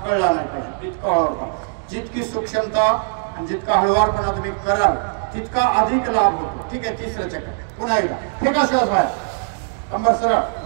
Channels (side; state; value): left; silent; digital silence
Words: कळला नाही पाहिजे. इतका हळूवारपणे. जितकी सूक्ष्मता आणि जितका हळूवारपणा तुम्ही कराल तितका अधिक लाभ होतो. ठीक आहे. तिसरं चक्र पुन्हा एकदा. फेका श्वास बाहेर. कंबर सरळ,